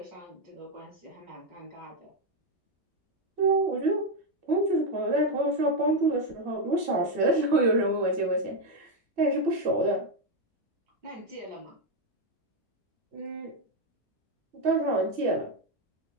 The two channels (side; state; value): both; normal; correlation 0.04